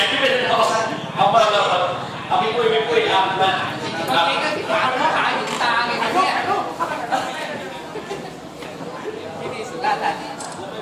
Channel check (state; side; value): identical; both; correlation 1.00